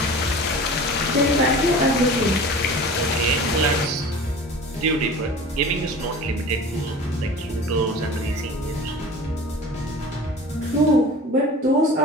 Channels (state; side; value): normal; both; correlation 0.39